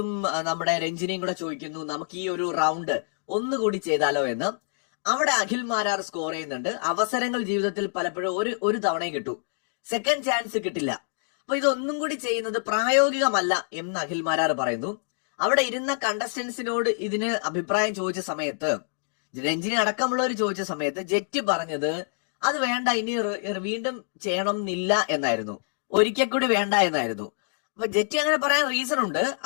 നമ്മുടെ രഞ്ജിനിയും കൂടെ ചോദിക്കുന്നു, നമുക്ക് ഈ ഒരു റൗണ്ട് ഒന്നുകൂടി ചെയ്താലോ എന്ന്. അവിടെ അഖിൽ മാരാർ സ്കോർ ചെയ്യുന്നുണ്ട്. അവസരങ്ങൾ ജീവിതത്തിൽ പലപ്പോഴും ഒരു തവണയും കിട്ടൂ, സെക്കൻഡ് ചാൻസ് കിട്ടില്ല. അപ്പൊ ഇതൊന്നും കൂടി ചെയ്യുന്നത് പ്രായോഗികമല്ല എന്ന് അഖിൽ മാരാർ പറയുന്നു. അവിടെ ഇരുന്ന കണ്ടസ്റ്റൻസിനോട് ഇതിന് അഭിപ്രായം ചോദിച്ച സമയത്ത്, രഞ്ജിനി അടക്കമുള്ളവർ ചോദിച്ച സമയത്ത് ജെറ്റി പറഞ്ഞത് അത് വേണ്ട, ഇനി വീണ്ടും ചെയ്യണം എന്നില്ല എന്നായിരുന്നു, ഒരിക്കൽ കൂടി വേണ്ട എന്നായിരുന്നു. അപ്പൊ ജെറ്റി അങ്ങനെ പറയാൻ റീസൺ ഉണ്ട്.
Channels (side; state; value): right; silent; digital silence